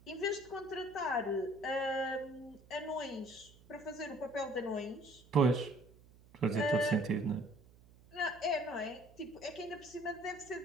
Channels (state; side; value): noise; right; hum, 24 dB below the sound